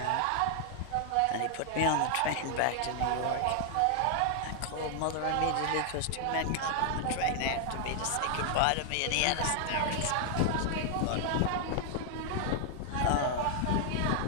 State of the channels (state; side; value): different; both; correlation 0.00